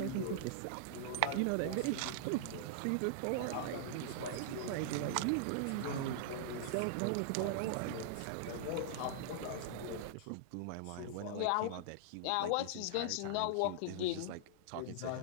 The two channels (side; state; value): both; different; correlation -0.01